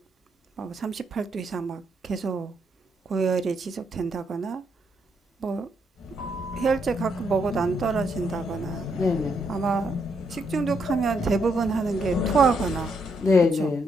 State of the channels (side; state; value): both; normal; correlation 0.76